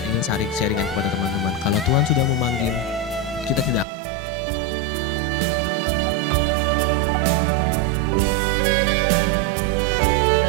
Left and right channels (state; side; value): drops out; left; at 3.9 s